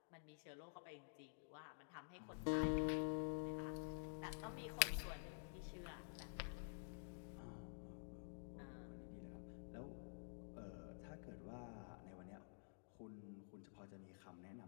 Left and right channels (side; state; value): right; silent; digital silence